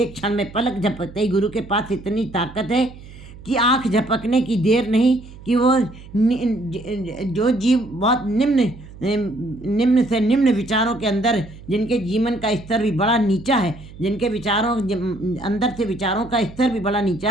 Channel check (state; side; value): noise; right; hum, 18 dB below the sound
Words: क्षण में पलक झपकते ही गुरु के पास इतनी ताकत है कि आँख झपकने की देर नहीं कि वो जो जीव बहुत निम्न से निम्न विचारों के अंदर, जिनके जीवन का स्तर भी बड़ा नीचा है, जिनके विचारों अंदर से विचारों का स्तर भी बड़ा नीचा